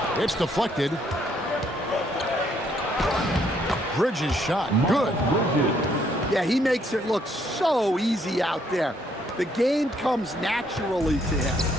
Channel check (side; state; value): both; normal; correlation 0.69